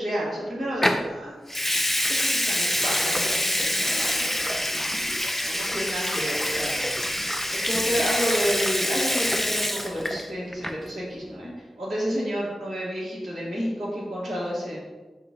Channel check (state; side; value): normal; both; correlation 0.88